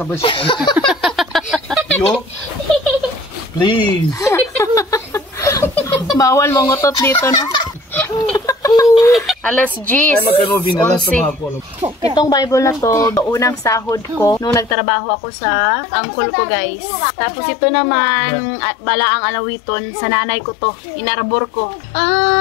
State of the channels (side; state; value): right; drops out; at 14.8 s